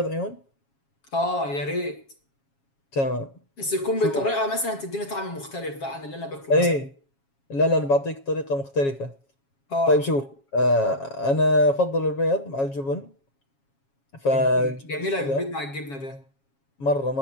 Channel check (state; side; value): late; right; 7.3 ms